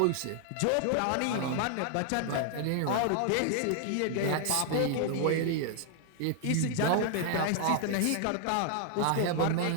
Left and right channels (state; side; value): different; both; correlation 0.00